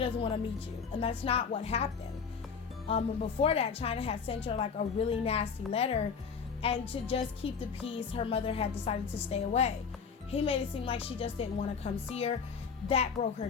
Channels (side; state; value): right; quieter; 6.0 dB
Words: want to meet you. And that's not what happened. Before that, Chyna had sent her like a really nasty letter. And to just keep the peace, her mother had decided to stay away. He made it seem like she just didn't want to come see her. That broke her